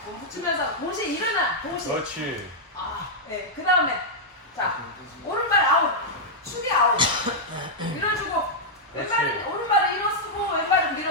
몸 붙이면서 동시에 일어나. 동시에. 그렇지. 아, 네. 그 다음에 자 오른발 아웃, 축이 아웃. 밀어주고 왼발은 오른발을 일어쓰고 왼발은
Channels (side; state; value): both; normal; correlation -0.06